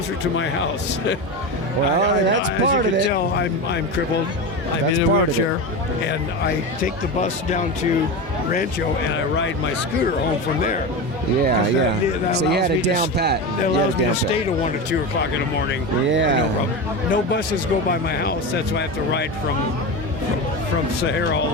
to my house. Well, that's part of it. As you can tell, I'm crippled. I'm in a wheelchair, and I take the bus down to Rancho, and I ride my scooter home from there. Yeah. So you had it down pat. That allows me to stay to 1 or 2 o'clock in the morning. Yeah. No problem. No buses go by my house. That's why I have to ride from Sahara all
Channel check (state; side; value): normal; both; correlation 0.21